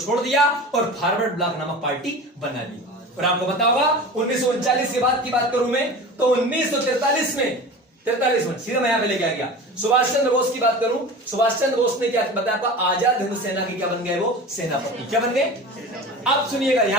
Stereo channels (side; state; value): both; normal; correlation 0.34